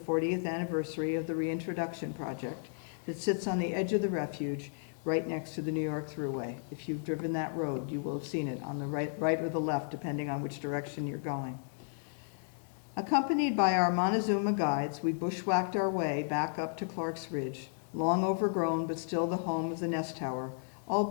anniversary of the Reintroduction Project that sits on the edge of the refuge right next to the New York Thruway. If you've driven that road, you will have seen it on the right or the left, depending on which direction you're going. Accompanied by our Montezuma guides, we bushwhacked our way back up to Clark's Ridge, long overgrown but still the home of the nest tower,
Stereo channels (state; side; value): silent; right; 55 dB below the other